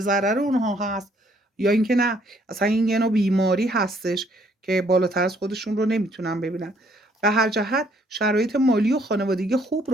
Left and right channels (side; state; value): both; normal; correlation 0.66